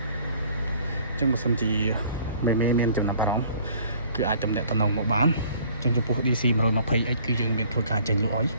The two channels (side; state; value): both; inverted; correlation -0.54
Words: អញ្ចឹងបើសិនជាមានចំណាប់អារម្មណ៍គឺអាចទំនាក់ទំនងមកបានអញ្ចឹងចំពោះ DC 120X គឺយើងមានធ្វើការចេញលក់ហើយ